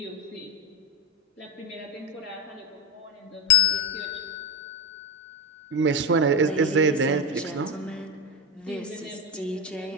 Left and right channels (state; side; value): normal; both; correlation 0.11